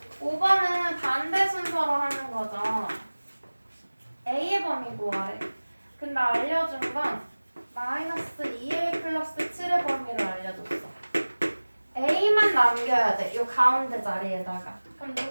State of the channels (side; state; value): both; inverted; correlation -1.00